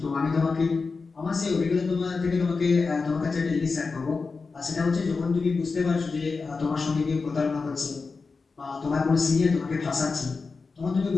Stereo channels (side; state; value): right; quieter; 4.4 dB